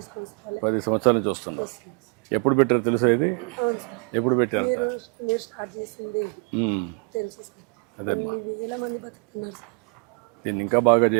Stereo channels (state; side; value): quieter; left; 35.8 dB